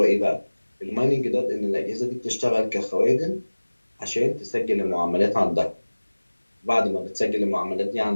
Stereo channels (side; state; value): both; inverted; correlation -1.00